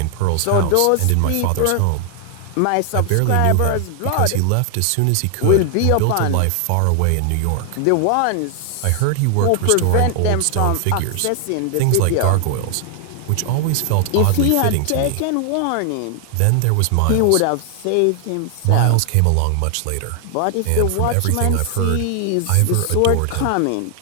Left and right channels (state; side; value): different; both; correlation 0.00